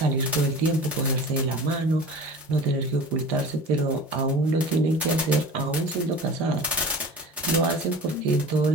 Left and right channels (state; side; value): normal; both; correlation 0.38